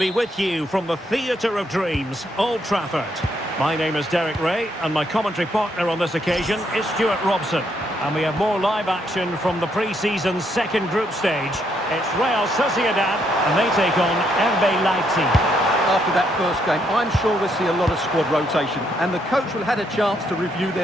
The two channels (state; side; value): normal; both; correlation 0.74